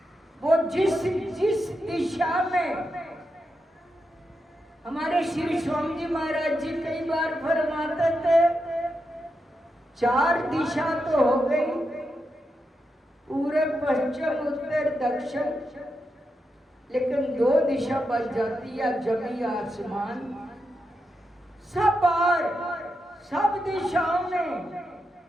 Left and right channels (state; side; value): normal; both; correlation 0.86